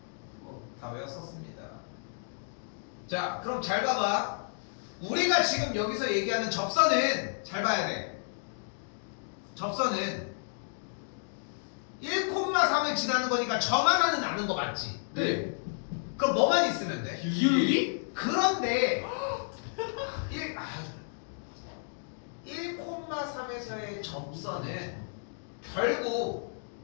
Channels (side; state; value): right; silent; digital silence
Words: 다 외웠었습니다. 자 그럼 잘 봐봐. 우리가 지금 여기서 얘기하는 접선은 잘 봐야 돼. 접선은 1,3을 지나는 거니까 점 하나는 아는 거 맞지? 네. 그럼 뭐만 있으면 돼? 기울기? 그런데 1,3에서의 접선은 결국